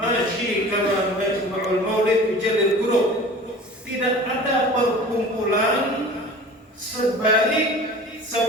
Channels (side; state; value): both; normal; correlation 0.40